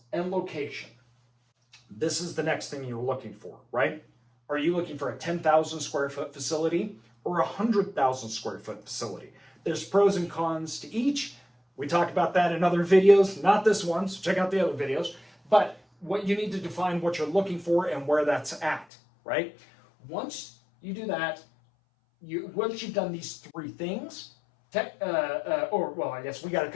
and location. This is the next thing you're looking for, right? Are you looking for a 10,000 square foot facility or a 100,000 square foot facility? There's pros and cons to each. We talked about that in other videos, not this one, so check out the other videos. But what you need to define what you're looking for and where that's at, right? Once you do that, once you've done these three things, I guess we got to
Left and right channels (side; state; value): right; drops out; at 18.9 s